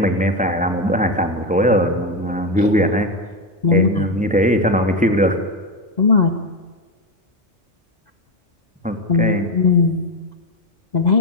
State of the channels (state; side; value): normal; both; correlation 0.13